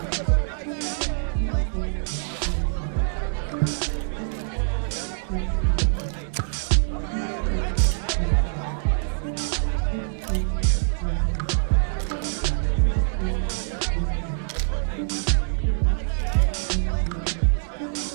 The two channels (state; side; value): silent; left; 62 dB below the other